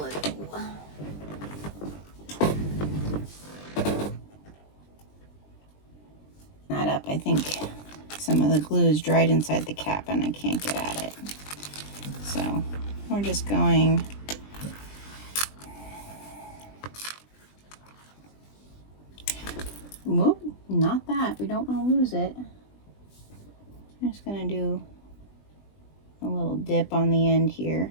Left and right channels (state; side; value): late; right; 20 ms